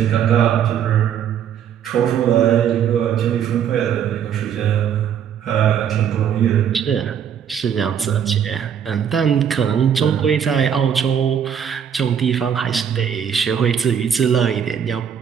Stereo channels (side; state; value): left; quieter; 8.5 dB